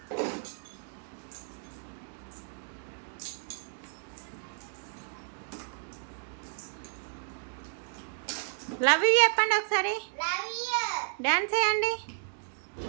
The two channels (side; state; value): left; silent; digital silence